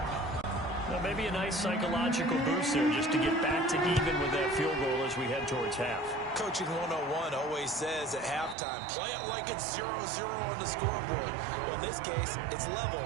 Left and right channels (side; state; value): left; drops out; at 8.6 s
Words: Well, maybe a nice psychological boost there just to get back to even with that field goal as we head towards half. Coaching 101 always says at halftime, play it like it's 0-0 on the scoreboard. Well, in this case, it's level,